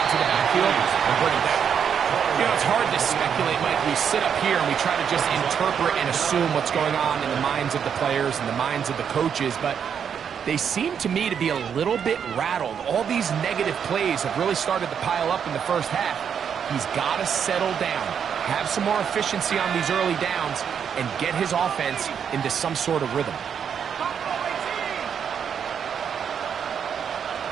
to the backfield and bring him down. You know, it's hard to speculate, Mike. We sit up here and we try to just interpret and assume what's going on in the minds of the players and the minds of the coaches, but they seem to me to be a little bit rattled. All these negative plays have really started to pile up in the first half. He's got to settle down, have some more efficiency on these early downs, and get his offense into some sort of rhythm.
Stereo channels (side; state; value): left; quieter; 7.7 dB